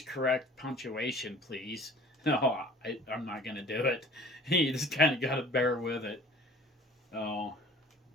correct punctuation, please." No, I'm not gonna do it. You just kind of gotta bear with it. Oh,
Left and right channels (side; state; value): both; normal; correlation 0.48